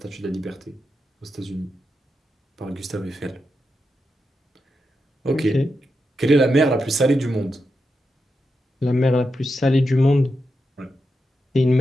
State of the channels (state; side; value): normal; both; correlation 0.87